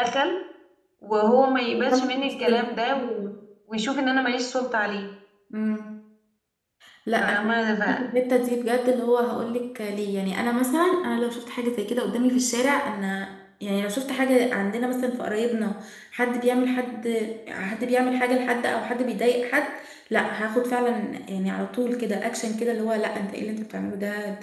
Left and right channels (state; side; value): identical; both; correlation 1.00